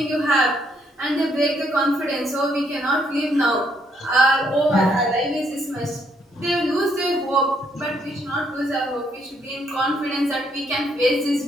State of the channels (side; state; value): both; normal; correlation 0.71